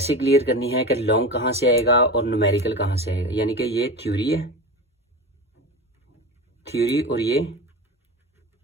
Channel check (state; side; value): normal; both; correlation 0.27